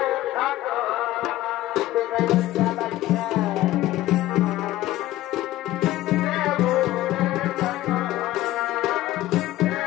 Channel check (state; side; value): quieter; right; 15.5 dB